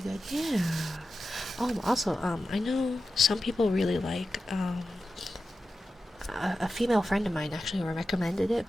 Yeah. Oh, also, I know some people really like, a female friend of mine actually recommended it,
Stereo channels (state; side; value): normal; both; correlation 0.92